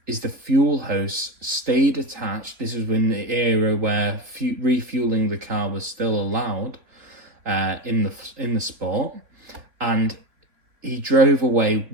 is the fuel hose stayed attached. This was in the era where refueling the car was still allowed in the sport, and he drove away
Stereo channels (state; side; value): late; left; 3.8 ms